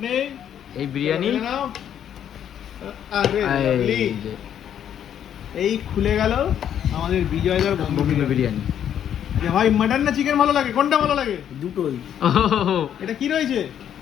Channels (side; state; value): right; quieter; 9.6 dB